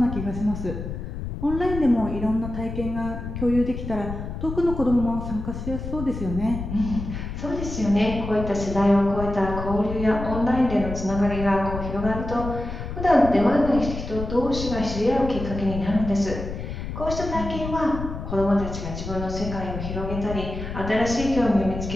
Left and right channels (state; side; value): noise; left; rumble, 7 dB below the sound